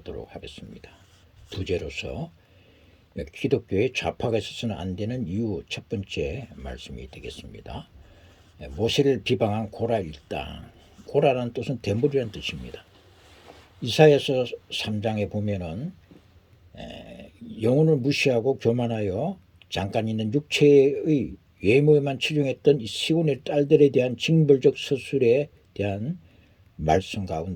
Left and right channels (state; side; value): identical; both; correlation 1.00